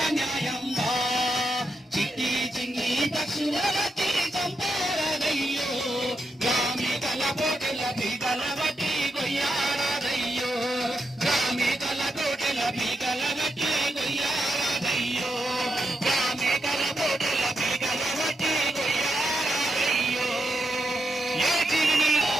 న్యాయంబా. చిట్టి చిన్ని పక్షుల బట్టి చంపారయ్యో, గ్రామికల కోటెల బీగల బట్టి కొయ్యారయ్యో, గ్రామికల కోటెల బీగల బట్టి కొయ్యారయ్యో, గ్రామికల కోటెల బీగల బట్టి కొయ్యారయ్యో. ఏ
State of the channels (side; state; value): both; normal; correlation 0.85